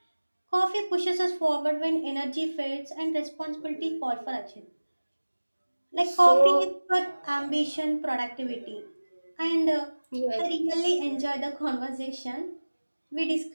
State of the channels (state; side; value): inverted; both; correlation -1.00